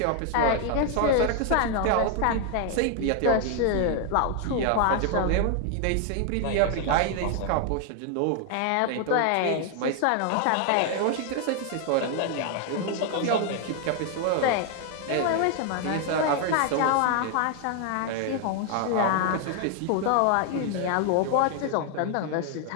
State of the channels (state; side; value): different; both; correlation 0.00